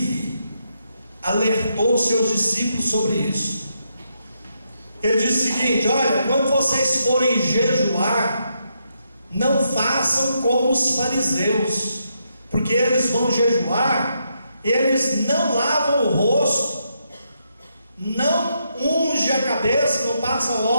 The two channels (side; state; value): both; inverted; correlation -0.80